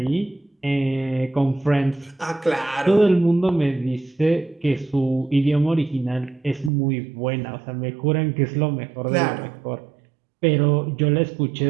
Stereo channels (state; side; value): drops out; left; at 6.7 s